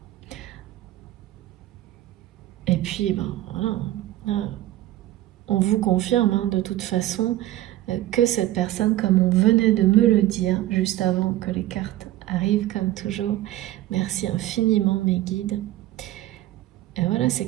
Et puis, ben, voilà, on vous confirme de toute façon que cette personne, comme on venait de me le dire juste avant que les cartes arrivent, comme toujours, merci infiniment mes guides. Et voilà, c'est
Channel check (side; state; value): left; quieter; 15.0 dB